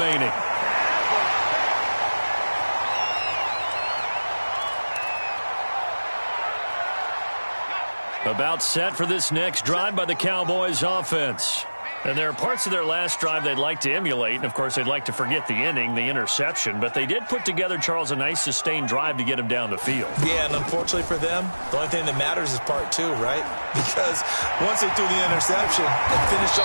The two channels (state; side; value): inverted; both; correlation -1.00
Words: About set for this next drive by the Cowboys offense. And there are parts of their last drive they'd like to emulate. And, of course, they'd like to forget the ending, the interception. But they did put together, Charles, a nice sustained drive to get him down the field. Yeah, and unfortunately for them, the only thing that matters is part 2, right? Because once they threw the interception and finished